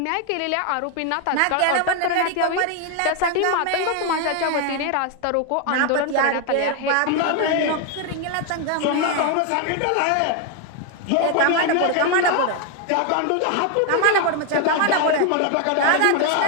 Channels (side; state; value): both; different; correlation 0.01